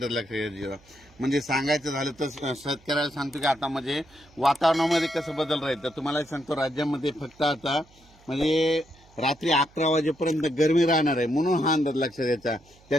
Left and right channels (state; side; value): noise; right; hum, 28 dB below the sound